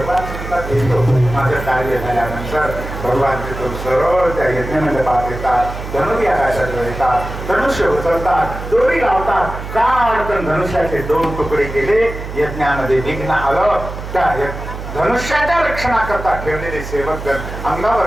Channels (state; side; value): noise; right; hum, 9 dB below the sound